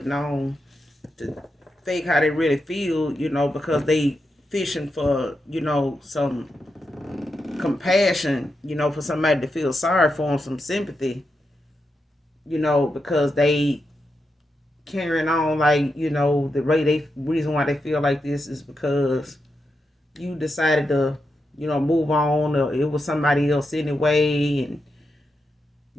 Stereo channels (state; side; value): normal; both; correlation 0.86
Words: on to fake how they really feel, you know, because they fishing for, you know, some compassion, you know, for somebody to feel sorry for them, some sympathy, you know, because they carrying on like, you know, the reason why they feel like this is because you decided to, you know, move on, or it was somebody else anyway, and,